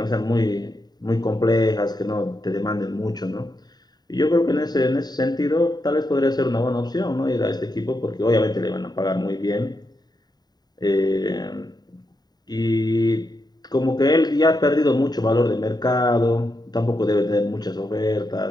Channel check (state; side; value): late; right; 0.20 ms